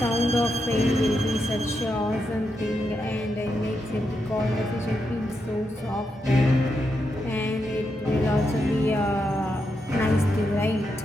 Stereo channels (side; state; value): both; normal; correlation 0.84